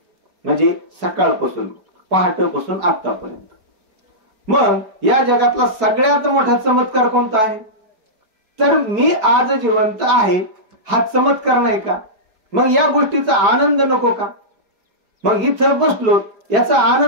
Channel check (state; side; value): late; left; 4.6 ms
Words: म्हणजे सकाळपासून पहाटेपासून आतापर्यंत. मग या जगातला सगळ्यात मोठा चमत्कार कोणता आहे? तर मी आज जिवंत आहे हा चमत्कार नाही का? मग या गोष्टीचा आनंद नको का? मग इथं बसलो याचा